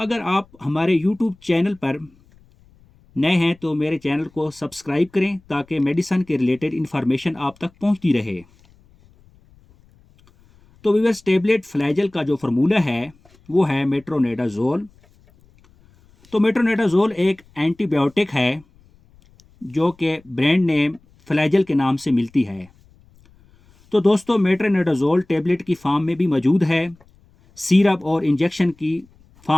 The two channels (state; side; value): noise; left; rumble, 30 dB below the sound